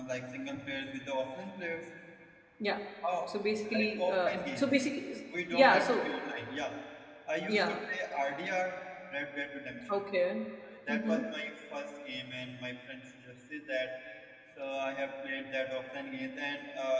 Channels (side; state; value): both; identical; correlation 1.00